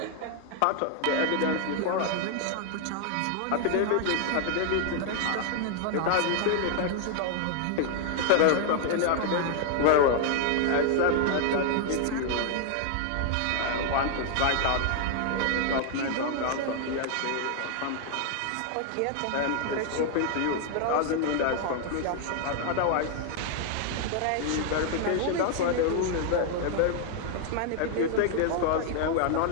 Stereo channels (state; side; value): different; both; correlation 0.00